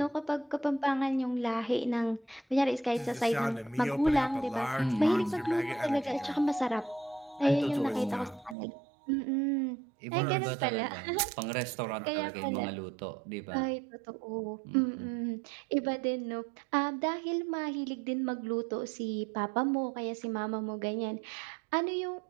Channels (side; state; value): left; drops out; at 8.6 s